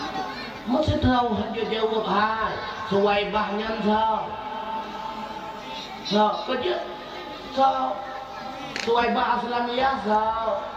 masih tahu hanya jawab hai Suwaibah nyantau kerja Suwaibah Aslamiyah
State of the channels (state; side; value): identical; both; correlation 1.00